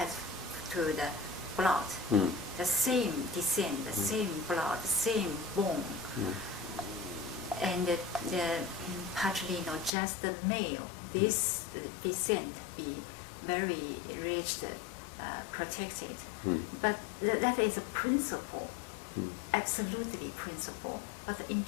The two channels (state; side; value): drops out; right; at 9.9 s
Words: to the blood, the same descent, the same blood, the same bone, and the patrilineal, just the male, this descent be very rich, protected. But that is a principle, absolutely principle. But in